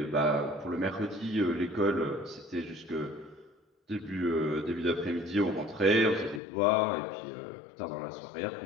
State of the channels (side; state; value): right; drops out; at 6.4 s